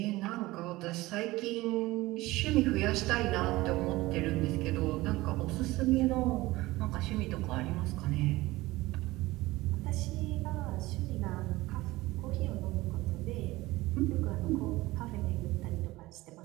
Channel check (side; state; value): left; quieter; 19.2 dB